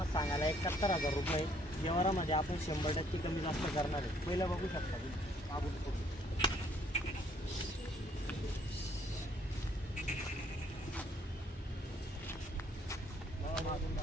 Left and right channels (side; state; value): both; normal; correlation 0.64